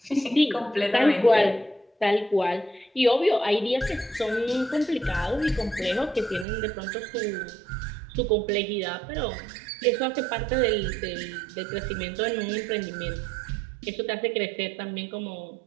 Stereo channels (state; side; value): drops out; left; at 6.5 s